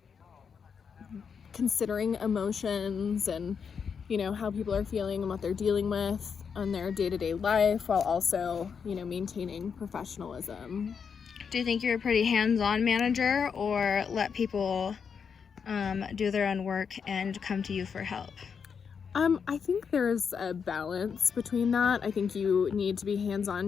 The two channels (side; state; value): right; quieter; 6.5 dB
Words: considering emotions and, how people are feeling and what they're dealing with on their day-to-day life, while also, maintaining professionalism. Do you think you're a pretty hands-on manager, or let people do their own work and come to you for help? I think there's a balance between that. I think you need to be